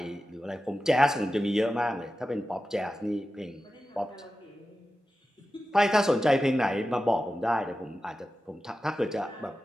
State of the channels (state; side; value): normal; both; correlation 0.93